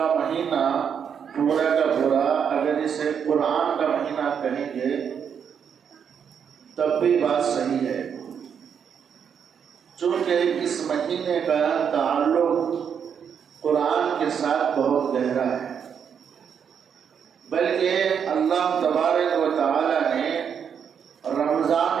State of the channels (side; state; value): left; quieter; 7.5 dB